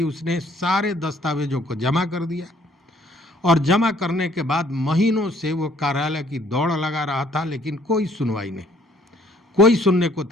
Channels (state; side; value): normal; both; correlation 0.61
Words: उसने सारे दस्तावेजों को जमा कर दिया। और जमा करने के बाद महीनों से वो कार्यालय की दौड़ लगा रहा था, लेकिन कोई सुनवाई नहीं, कोई सुनने को